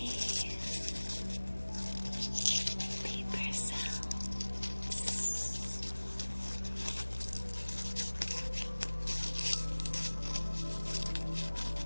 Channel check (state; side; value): inverted; both; correlation -1.00